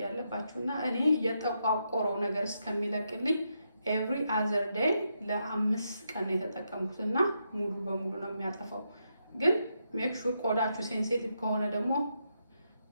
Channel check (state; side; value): inverted; both; correlation -0.82